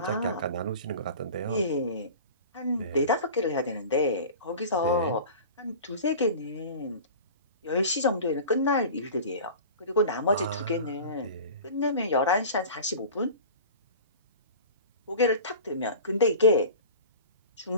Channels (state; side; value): inverted; both; correlation -0.37